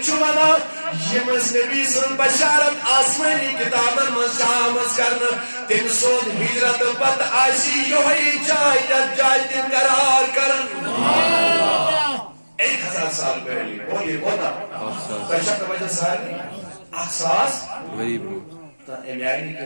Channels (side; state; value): both; inverted; correlation -1.00